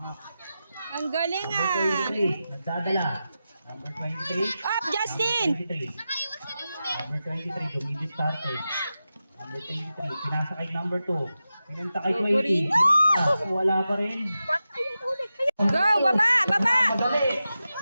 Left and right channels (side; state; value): both; inverted; correlation -0.92